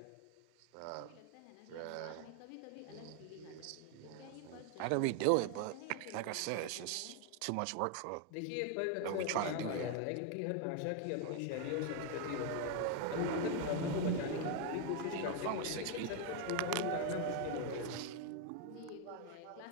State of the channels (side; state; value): both; different; correlation 0.01